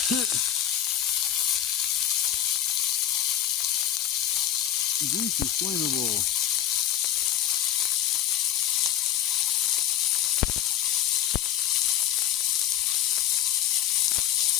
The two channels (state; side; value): quieter; right; 11.5 dB